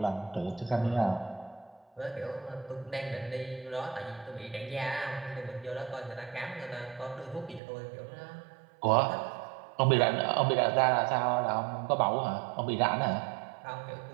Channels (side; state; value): left; drops out; at 7.6 s